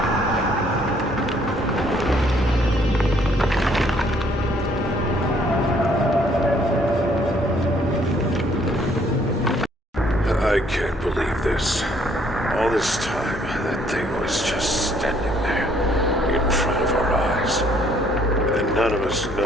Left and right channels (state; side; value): normal; both; correlation 0.64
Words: I can't believe this. All this time, that thing was just standing there, in front of our eyes. And none of us